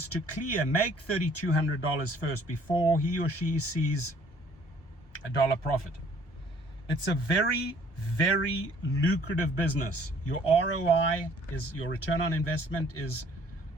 to make $3,200 first before he or she sees a dollar profit. It's a very, very lucrative business. Your ROI is, your return on investment is,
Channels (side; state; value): right; late; 1.1 ms